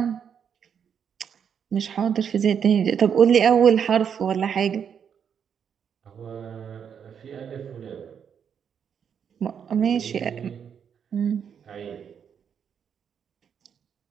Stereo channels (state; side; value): quieter; left; 7.7 dB